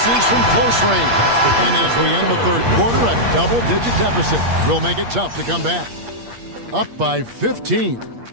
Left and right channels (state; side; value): late; left; 8.6 ms